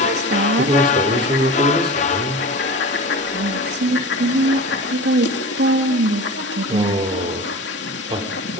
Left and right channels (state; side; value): normal; both; correlation 0.33